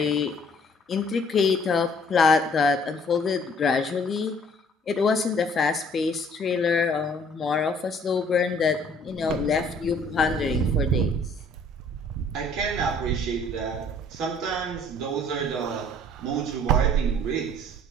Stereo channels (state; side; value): normal; both; correlation 0.57